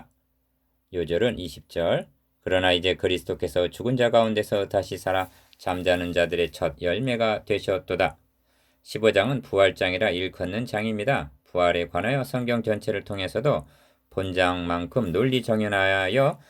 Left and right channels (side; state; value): both; identical; correlation 1.00